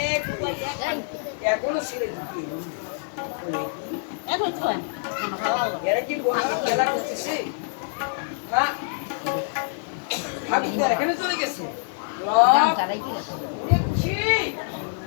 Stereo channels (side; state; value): right; silent; 61 dB below the other